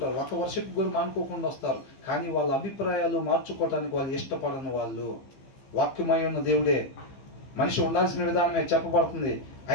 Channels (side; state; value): right; late; 15 ms